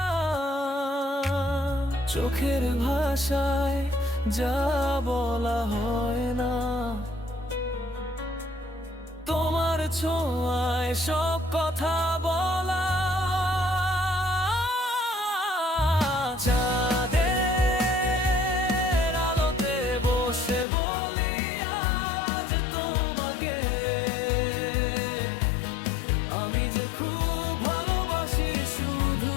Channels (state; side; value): drops out; right; at 20.7 s